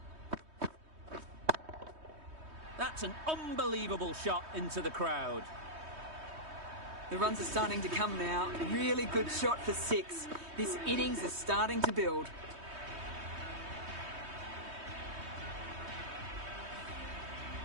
That's an unbelievable shot into the crowd. The runs are starting to come now. Really good shot for 6. This innings is starting to build.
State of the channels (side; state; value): left; late; 3.2 ms